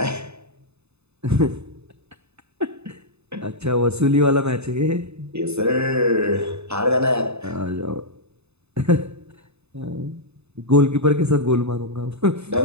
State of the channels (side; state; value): left; late; 0.80 ms